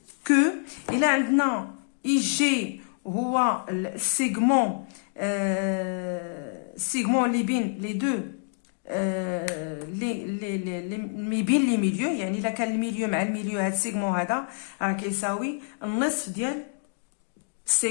que il a عندنا IJ هو السيغمون اللي بين لي دو لي بين لي ميليو، يعني الا كان الميليو مع الميليو هاد السيغمون هذا راه كيساوي النصف ديال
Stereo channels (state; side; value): silent; right; digital silence